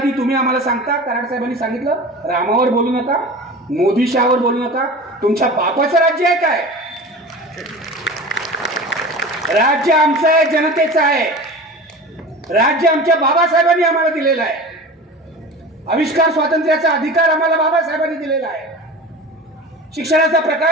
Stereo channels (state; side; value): normal; both; correlation 0.35